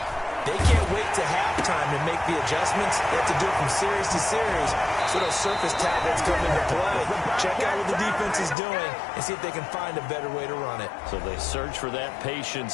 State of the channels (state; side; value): drops out; right; at 8.6 s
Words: They can't wait to halftime to make the adjustments. They have to do it from series to series so those surface tablets come into play. Check out what the defense is doing and see if they can find a better way to run it. So they search for that